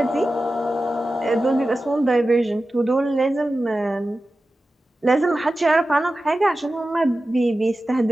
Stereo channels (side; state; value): both; normal; correlation 0.94